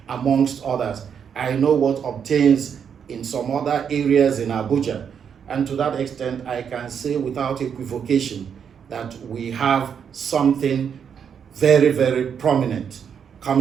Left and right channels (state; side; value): quieter; left; 7.5 dB